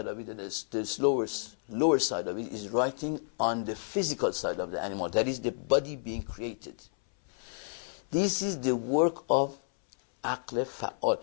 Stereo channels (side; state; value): right; silent; 57 dB below the other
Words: of it, and the lower side of it is writing on the physical side of the animal. That is the body being created. This is the work of aql fa'al.